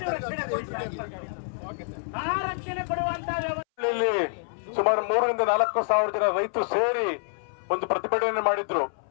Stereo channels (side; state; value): right; silent; 60 dB below the other